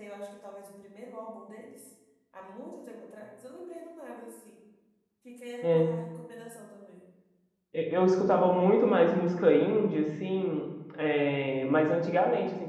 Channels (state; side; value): identical; both; correlation 1.00